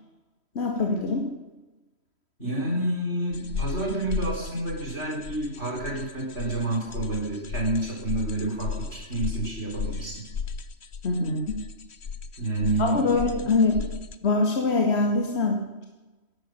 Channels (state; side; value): late; right; 3.1 ms